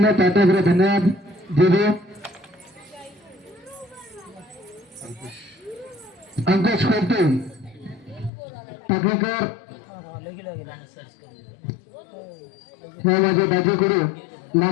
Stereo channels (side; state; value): right; drops out; at 8.3 s